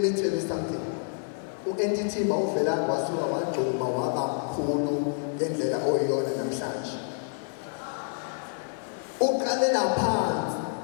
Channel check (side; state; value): right; silent; 59 dB below the other